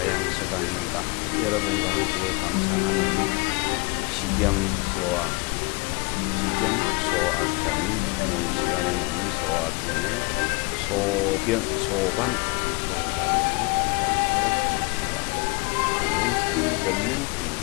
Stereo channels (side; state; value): right; quieter; 28.1 dB